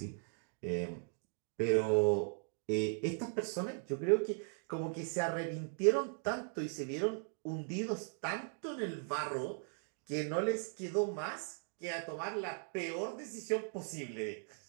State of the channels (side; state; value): left; silent; 52 dB below the other